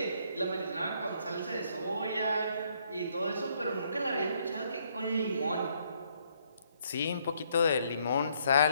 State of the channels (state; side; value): inverted; both; correlation -0.70